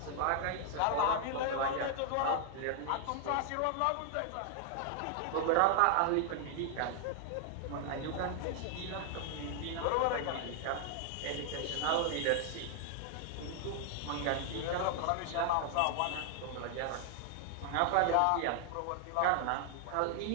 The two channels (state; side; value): different; both; correlation 0.00